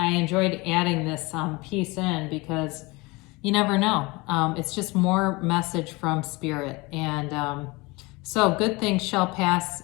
enjoyed adding this piece in, because you never know. It's just more message from spirit. And so good things shall pass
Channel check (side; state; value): right; quieter; 24.3 dB